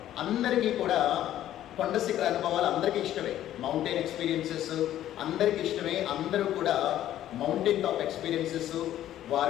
అందరికీ కూడా కొండ శిఖర అనుభవాలు అందరికీ ఇష్టమే. మౌంటైన్ ఎక్స్పీరియన్సెస్ అందరికీ ఇష్టమే. అందరూ కూడా మౌంటైన్ టాప్ ఎక్స్పీరియన్సెస్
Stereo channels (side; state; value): right; quieter; 12.4 dB